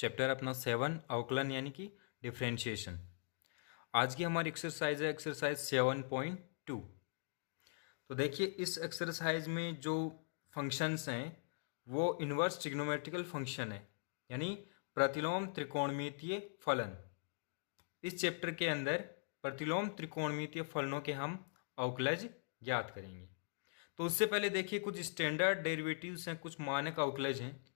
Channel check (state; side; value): silent; right; digital silence